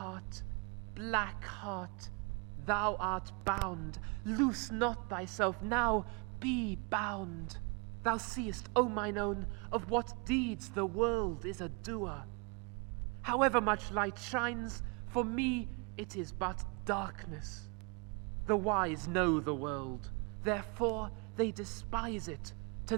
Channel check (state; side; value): quieter; left; 32.8 dB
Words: black heart, thou art bound. Loose not thyself now, be bound. Thou seest, O mine own, of what deeds the world is a doer. However much light shines, for me it is but darkness. The wise know the world, therefore they despise it. To